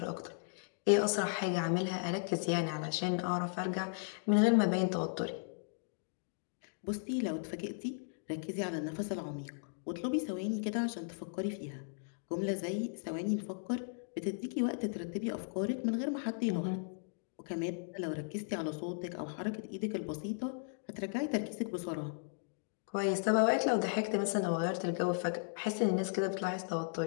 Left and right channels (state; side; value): silent; right; digital silence